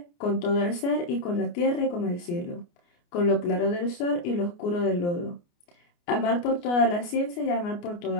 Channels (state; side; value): late; right; 29 ms